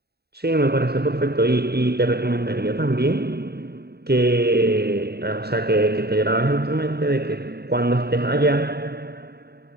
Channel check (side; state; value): left; late; 0.47 ms